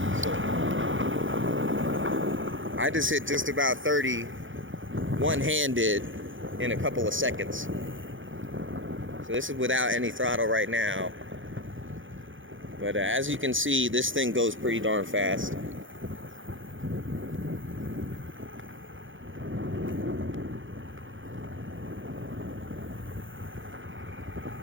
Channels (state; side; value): late; left; 0.57 ms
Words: So, I just hit just about 30 one-handed in a couple of seconds. So this is without any throttle right now. But as you can see, this thing goes pretty darn fast.